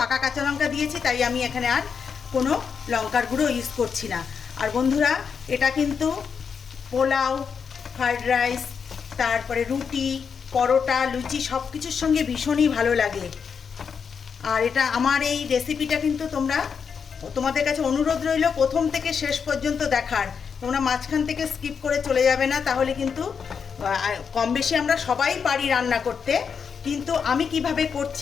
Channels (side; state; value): right; quieter; 6.4 dB